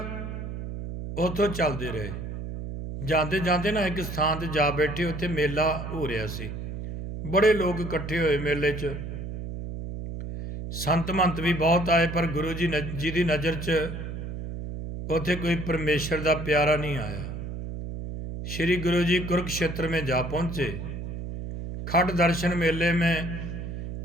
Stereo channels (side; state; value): right; noise; hum, 7 dB below the sound